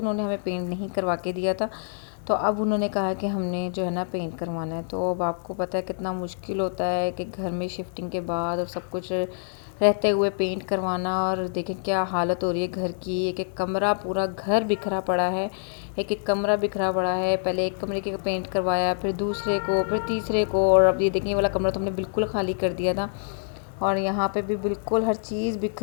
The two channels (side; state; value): right; silent; 61 dB below the other